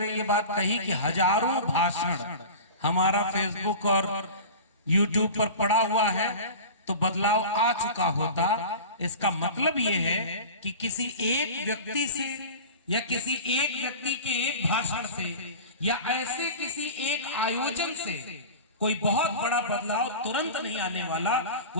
ये बात कही कि हजारों भाषण हमारा फेसबुक और यूट्यूब पर पड़ा हुआ है तो बदलाव आ चुका होता। इसका मतलब यह है कि किसी एक व्यक्ति से या किसी एक व्यक्ति के एक भाषण से या ऐसे किसी एक आयोजन से कोई बहुत बड़ा बदलाव तुरंत नहीं आने वाला।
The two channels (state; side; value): inverted; both; correlation -0.34